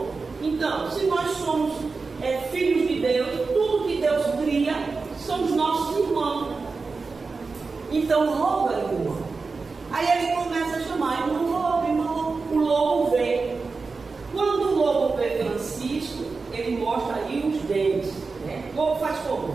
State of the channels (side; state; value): left; quieter; 4.3 dB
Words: Então, se nós somos filhos de Deus, tudo que Deus cria são os nossos irmãos. Então, o lobo é irmão. Aí ele começa a chamar: irmão lobo, irmão lobo. O lobo vem. Quando o lobo vê Francisco, ele mostra aí os dentes, né? O lobo faz como?